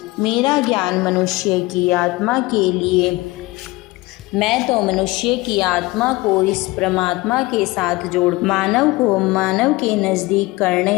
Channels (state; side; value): quieter; right; 21.3 dB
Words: मेरा ज्ञान मनुष्य की आत्मा के लिए, मैं तो मनुष्य की आत्मा को इस परमात्मा के साथ जोड़ मानव को मानव के नज़दीक